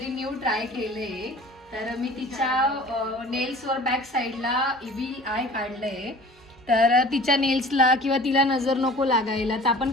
न्यू ट्राय केले. तर मी तिच्या नेल्सवर बॅक साईडला इव्हिल आय काढलंय. तर तिच्या नेल्सला किंवा तिला नजर नको लागायला तर आपण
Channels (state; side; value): normal; both; correlation 0.45